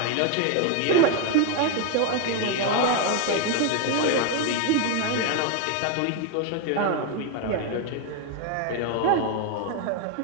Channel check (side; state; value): both; different; correlation 0.01